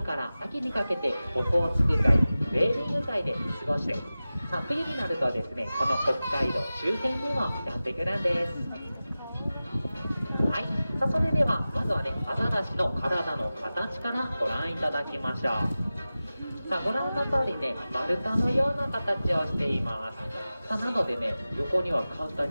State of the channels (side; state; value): both; inverted; correlation -0.96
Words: から秋にかけてオホーツク海、ウェーリング海で過ごして、さあ冬になるとですねこの北海道周辺にもやってくるんです。はい、さあそれではまずはねアザラシの体の形からご覧いただきましょう。さあご覧の通りね丸太のような形をしています。さあなのでね横には簡単